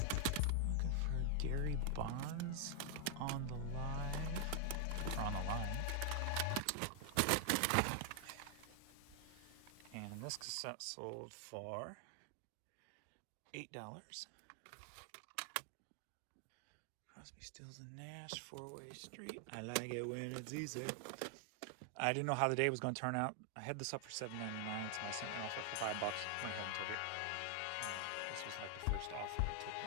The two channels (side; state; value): both; different; correlation 0.00